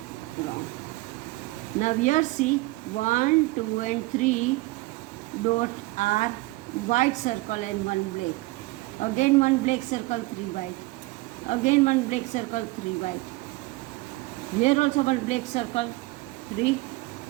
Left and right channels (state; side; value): quieter; left; 21.4 dB